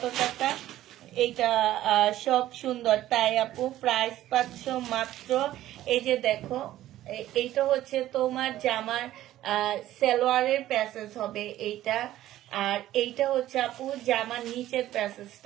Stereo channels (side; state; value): left; quieter; 13.9 dB